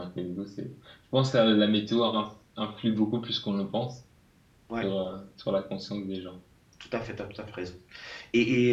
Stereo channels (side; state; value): both; identical; correlation 1.00